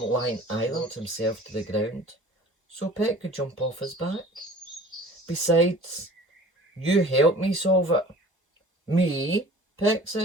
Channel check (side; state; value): both; normal; correlation 0.46